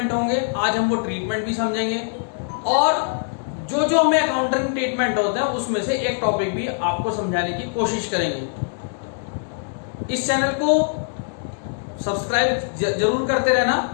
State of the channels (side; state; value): right; silent; digital silence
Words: होंगे। आज हम वो ट्रीटमेंट भी समझेंगे और जो जो हमें अकाउंटिंग ट्रीटमेंट होते हैं उसमें से एक टॉपिक भी आपको समझाने की कोशिश करेंगे। इस चैनल को सब्सक्राइब जरूर करते रहना,